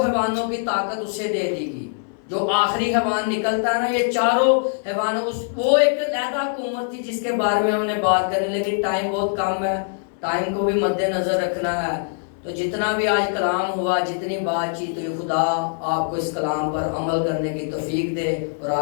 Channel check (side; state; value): right; silent; 63 dB below the other